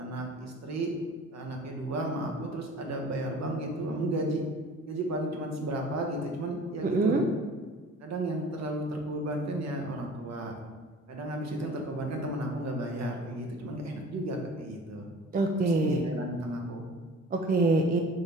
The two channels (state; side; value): normal; both; correlation 0.44